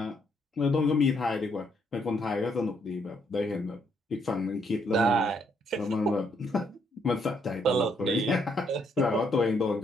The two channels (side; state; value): both; normal; correlation 0.72